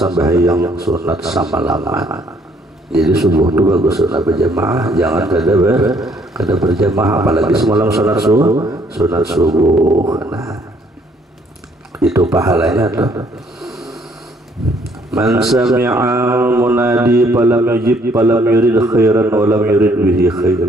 sunat semalaman. Jadi subuh itu bagus sunat berjamaah, jangan kada berjamaah apalagi semalam sunat subuh. Nah, itu pahalanya tuh. Man sami'a munadi falam yujib falam yurid khairan wa lam yurid bihi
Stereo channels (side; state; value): both; normal; correlation 0.65